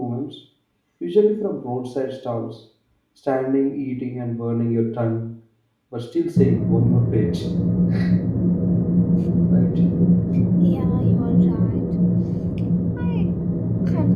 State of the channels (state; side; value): identical; both; correlation 1.00